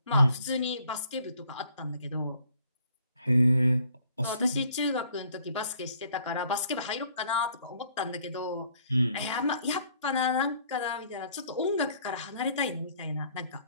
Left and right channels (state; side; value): inverted; both; correlation -0.61